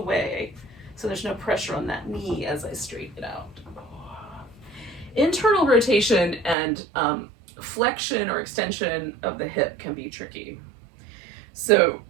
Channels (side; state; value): left; drops out; at 6.6 s